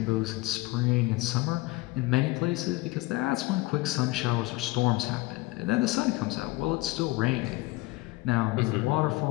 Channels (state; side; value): quieter; right; 20.9 dB